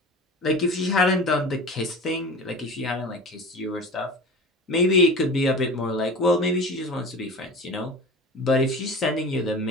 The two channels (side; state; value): both; normal; correlation 0.35